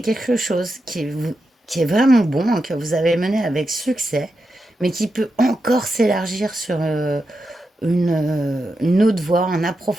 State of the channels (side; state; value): both; normal; correlation 0.88